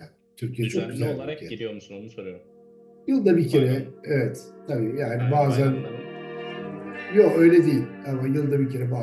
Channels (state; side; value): identical; both; correlation 1.00